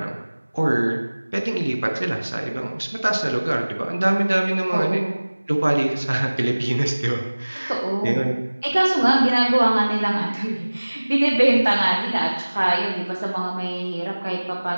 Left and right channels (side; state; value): both; inverted; correlation -1.00